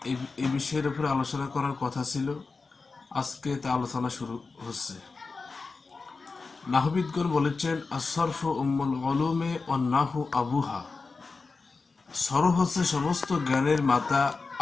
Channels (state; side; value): quieter; right; 4.2 dB